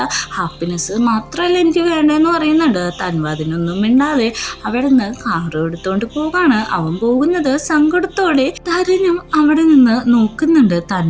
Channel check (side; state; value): both; identical; correlation 1.00